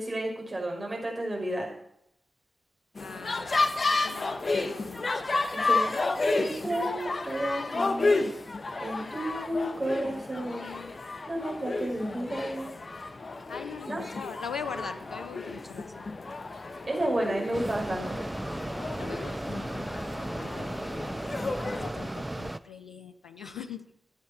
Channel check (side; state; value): both; normal; correlation 0.93